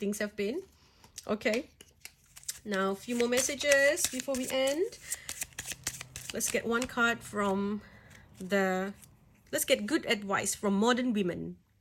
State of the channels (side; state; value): both; identical; correlation 1.00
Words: have been. Okay, now a few more messages before we end. Let's get one card from let's get good advice from modern women.